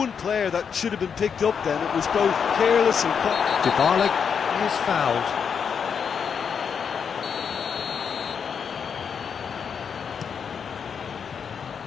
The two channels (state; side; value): quieter; right; 6.8 dB